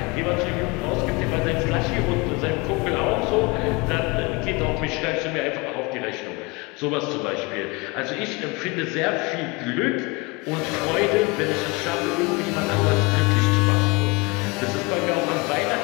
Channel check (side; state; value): right; quieter; 26.9 dB